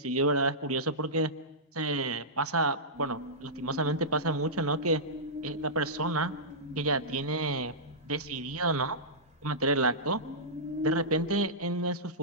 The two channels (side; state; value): both; normal; correlation -0.15